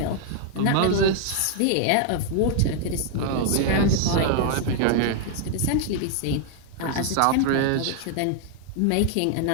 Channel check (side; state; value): both; different; correlation 0.00